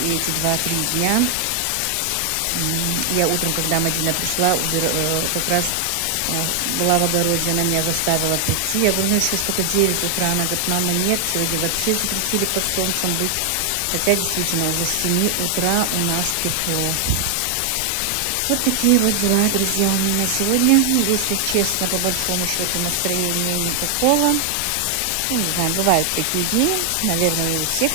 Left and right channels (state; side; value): different; both; correlation 0.00